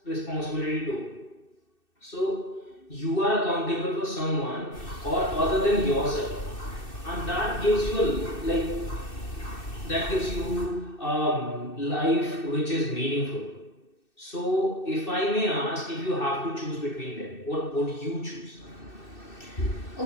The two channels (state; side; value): late; right; 2.6 ms